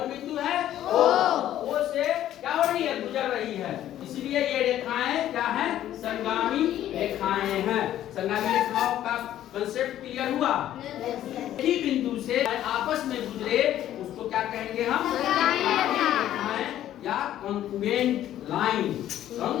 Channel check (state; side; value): quieter; right; 12.2 dB